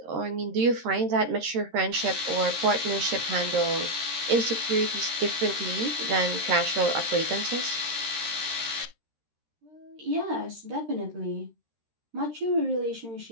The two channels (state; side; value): late; left; 13 ms